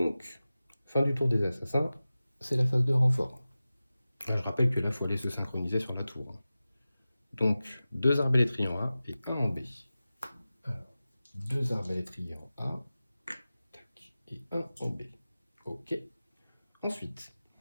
fin du tour des assassins, c'est la phase de renfort. Là, je rappelle que là, il faut aller se synchroniser sur la tour. Donc, 2 arbalétriers en A et 1 en B. Alors, 2 arbalétriers en A, tac, et 1 en B. Ok. Ensuite,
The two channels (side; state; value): both; inverted; correlation -0.96